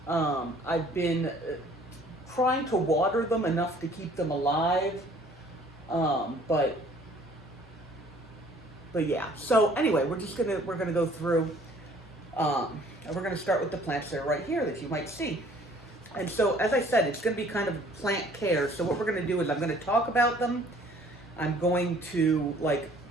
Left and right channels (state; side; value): normal; both; correlation 0.55